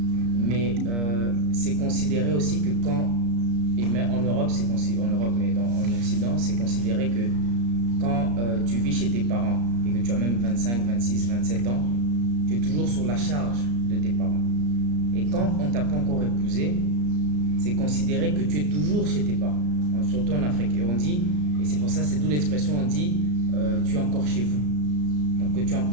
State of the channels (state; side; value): late; left; 34 ms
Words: Mais c'est considéré aussi que quand, et même en Europe, mais en Occident, c'est considéré que quand tu vis chez tes parents et que tu as même 25, 26, 27 ans, tu es toujours sur la charge de tes parents. Et quand on ne t'a pas encore épousé, c'est considéré que tu es toujours chez tes parents, surtout en Afrique. Et on dit, et c'est pour ça, c'est d'où l'expression, on dit tu es encore chez vous. Donc que tu es